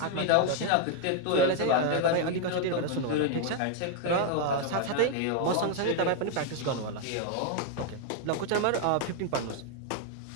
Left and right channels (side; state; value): both; different; correlation 0.00